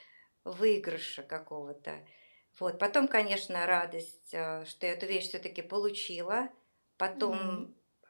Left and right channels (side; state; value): both; inverted; correlation -1.00